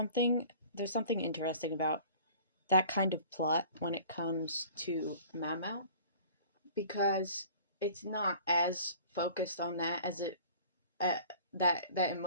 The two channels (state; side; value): inverted; both; correlation -0.47